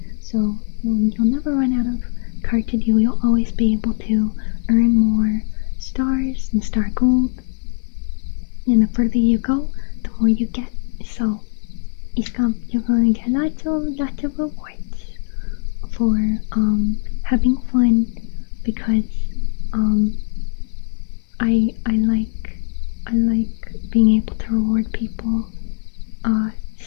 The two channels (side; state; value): right; silent; 60 dB below the other